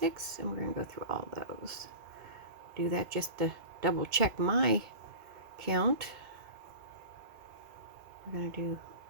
and we're going to go through all those. Do that just to double check my count. We're going to do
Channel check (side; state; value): left; late; 2.2 ms